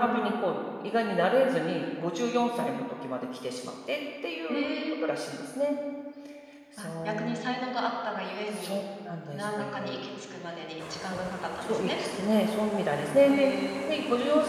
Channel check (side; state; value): both; identical; correlation 1.00